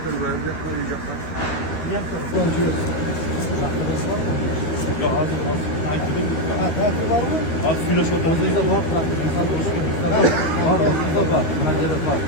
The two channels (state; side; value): late; right; 13 ms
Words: Ya hazır. Tatil var mı? Az filo şotan. Bizde var. Bizde var. Buna gerek var.